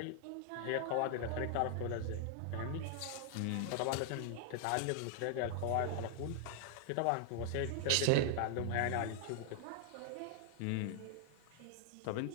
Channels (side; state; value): both; different; correlation 0.00